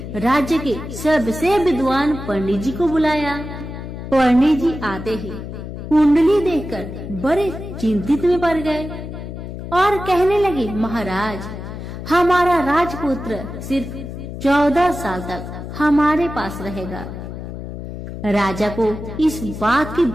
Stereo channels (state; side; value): noise; left; hum, 9 dB below the sound